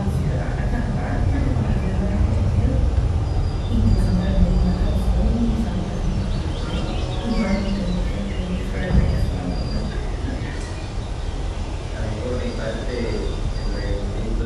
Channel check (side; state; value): both; identical; correlation 1.00